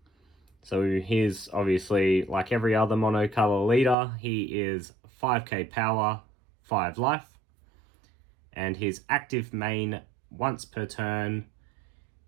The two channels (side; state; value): left; drops out; at 4.0 s